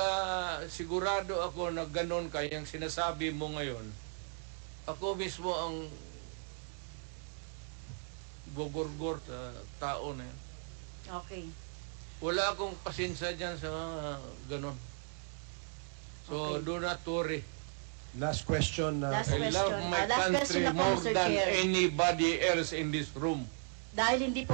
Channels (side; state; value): left; silent; 54 dB below the other